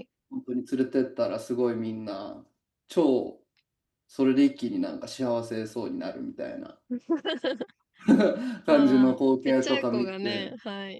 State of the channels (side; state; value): both; identical; correlation 1.00